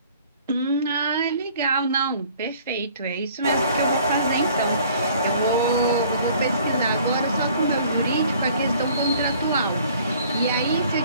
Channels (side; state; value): both; inverted; correlation -0.55